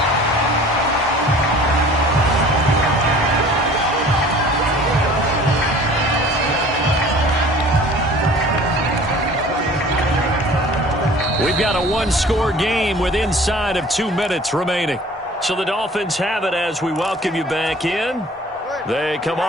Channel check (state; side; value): normal; both; correlation 0.47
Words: We've got a one-score game with inside of 2 minutes remaining. So the Dolphins have it as we welcome you back in. They come